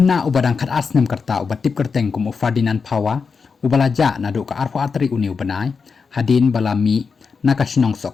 ubadang khat asnem karta ubatip kerteng kum ufadinan pawa ubalaja na do ka arpo atri uniu banai hadin balami nakashnong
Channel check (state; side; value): quieter; right; 5.3 dB